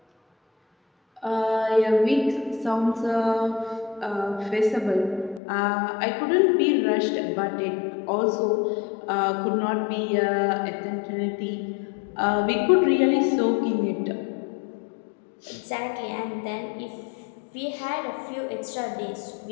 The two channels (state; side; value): drops out; right; at 5.4 s